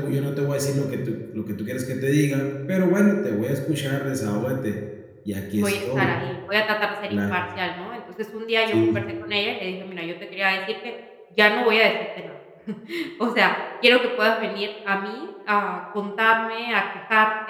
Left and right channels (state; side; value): identical; both; correlation 1.00